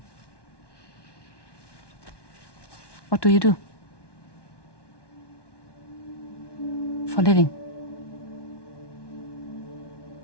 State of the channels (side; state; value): right; late; 1.1 ms